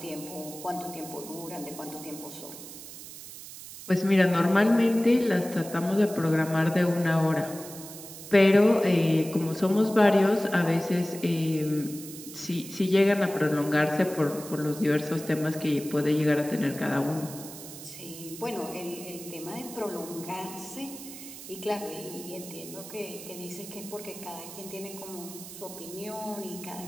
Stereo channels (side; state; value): right; noise; hiss, 13 dB below the sound